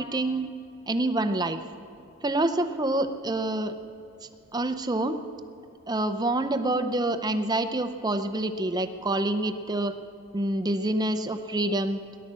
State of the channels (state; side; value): normal; both; correlation 0.57